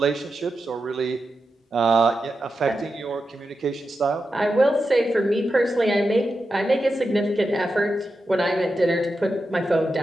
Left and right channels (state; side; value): normal; both; correlation 0.89